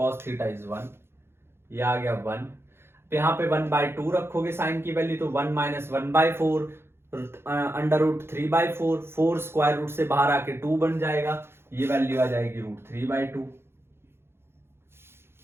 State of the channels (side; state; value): left; late; 0.12 ms